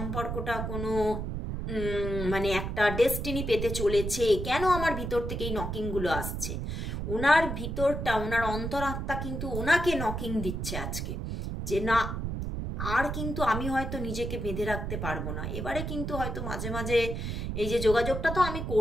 কোনো মানে একটা ডেস্টিনি পেতে চলেছে। কেন আমার ভিতর থেকে এই নকিংগুলো আসছে? ওনার ভিতরটা, ওনার অন্তরাত্মা কিন্তু ওনাকে নকিং দিচ্ছে আজকে, যে না, আর কিন্তু আমি হয়তো নিজেকে বেঁধে রাখতে পারবো না। এবারে কিন্তু হয়তো মাঝে মাঝে এই যে যোগাযোগটা তো আমি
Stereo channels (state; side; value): noise; right; rumble, 4 dB below the sound